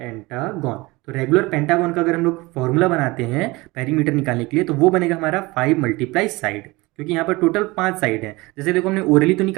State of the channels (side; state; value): left; quieter; 22.4 dB